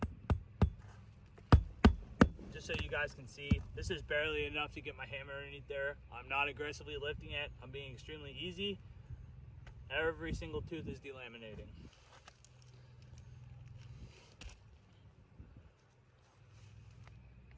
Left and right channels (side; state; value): both; identical; correlation 1.00